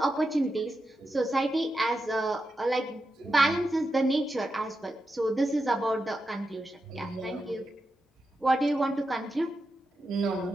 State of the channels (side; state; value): both; normal; correlation 0.88